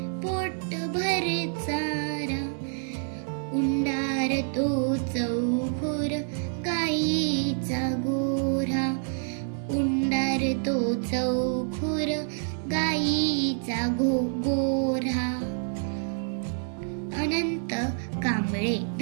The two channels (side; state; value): left; silent; digital silence